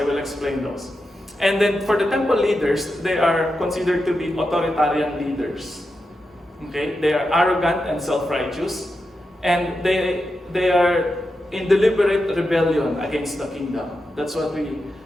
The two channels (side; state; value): both; normal; correlation 0.88